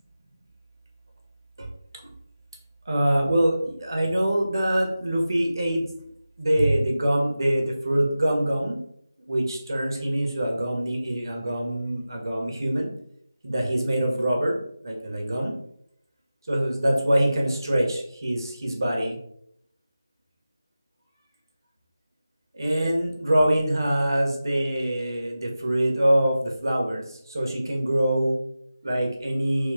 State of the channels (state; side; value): inverted; both; correlation -0.94